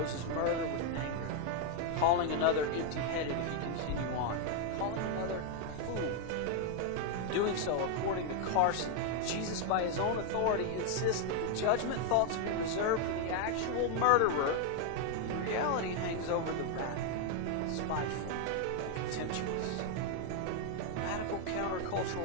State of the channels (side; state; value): both; different; correlation 0.01